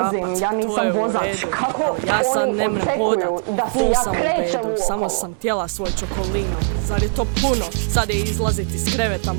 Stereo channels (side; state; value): left; silent; digital silence